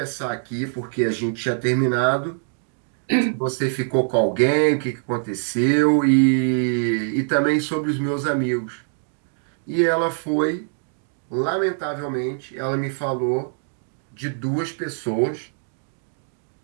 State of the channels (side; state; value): left; silent; 63 dB below the other